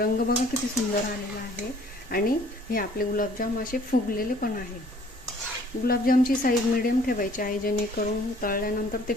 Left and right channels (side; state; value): both; normal; correlation 0.56